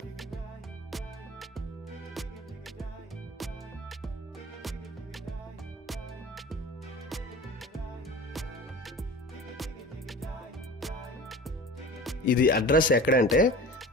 ఇది అడ్రస్ ఎక్కడంటే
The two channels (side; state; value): both; normal; correlation 0.37